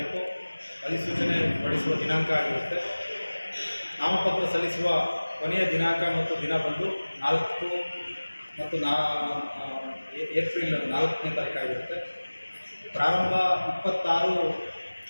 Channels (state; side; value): inverted; both; correlation -1.00